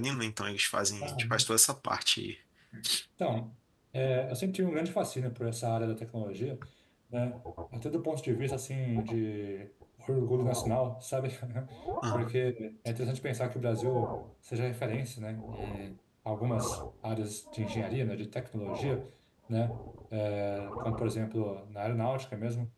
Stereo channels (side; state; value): both; identical; correlation 1.00